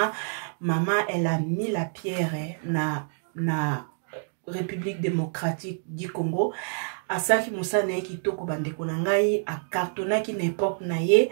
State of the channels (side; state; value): left; silent; digital silence